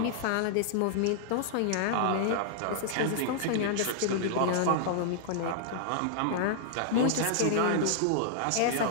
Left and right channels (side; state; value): both; different; correlation -0.01